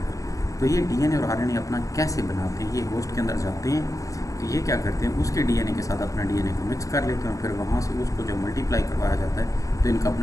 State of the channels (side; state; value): right; late; 0.16 ms